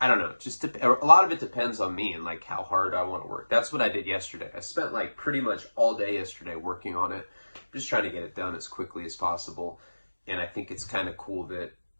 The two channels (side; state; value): both; inverted; correlation -1.00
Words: don't know, a lot of it depends on me and like how hard I want to work. That's what I did yesterday. I spent like pretty much all day yesterday working on it. I'm just trying to get it done as quickly as possible. And I think it's kind of cool that